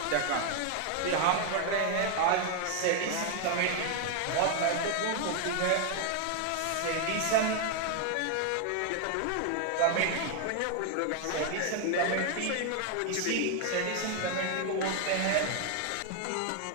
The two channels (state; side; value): different; both; correlation 0.00